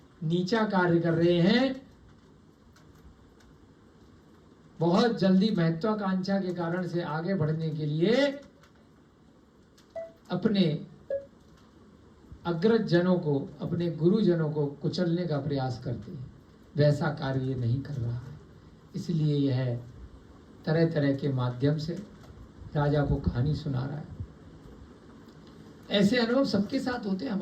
नीचा कार्य कर रहे हैं, बहुत जल्दी महत्वाकांक्षा के कारण से आगे बढ़ने के लिए अपने अग्रज जनों को, अपने गुरुजनों को कुचलने का प्रयास करते हैं। वैसा कार्य ये नहीं कर रहा है, इसलिए यह तरह तरह के माध्यम से राजा को कहानी सुना रहा है। ऐसे अनुभव सबके साथ होते हैं,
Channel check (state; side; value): identical; both; correlation 1.00